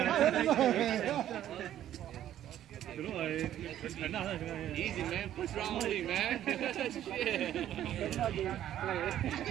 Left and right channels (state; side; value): quieter; left; 11.8 dB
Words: Đúng rồi. Easy man, push round only man.